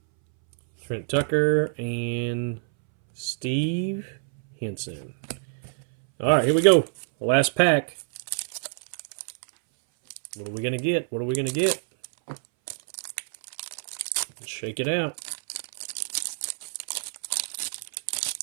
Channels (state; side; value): silent; left; 60 dB below the other